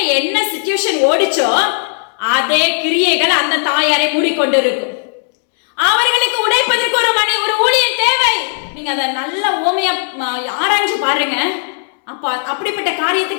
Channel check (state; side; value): silent; right; 64 dB below the other